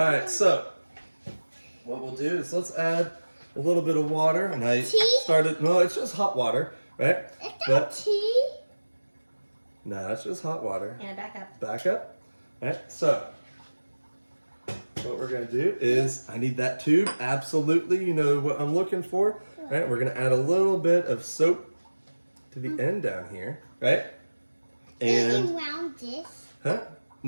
so, what we'll do is let's add a little bit of water. And I Tea? started, no, it's just hot water, right? Is that tea? No, it's just hot water. And back up. Back up. Alright, so, what we're going to do is, I need that tube, absolutely, you know what I'm looking for. Right, we're going to add a little bit of soap to the end down here, right? And And, around this. huh?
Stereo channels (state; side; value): inverted; both; correlation -1.00